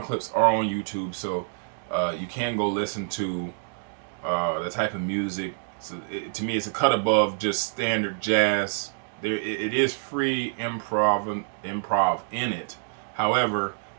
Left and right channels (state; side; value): silent; left; digital silence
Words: clips are on YouTube, so you can go listen to the type of music. So to me, it's a cut above just standard jazz. It is free improv in it. However,